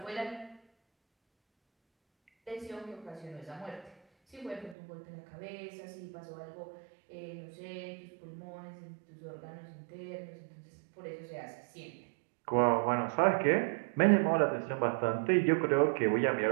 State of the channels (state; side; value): drops out; left; at 4.8 s